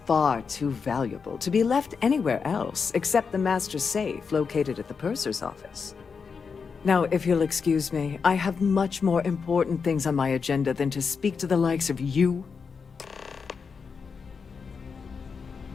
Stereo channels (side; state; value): right; quieter; 5.6 dB